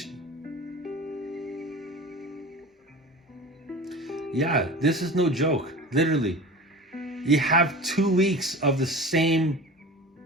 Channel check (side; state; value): both; normal; correlation 0.35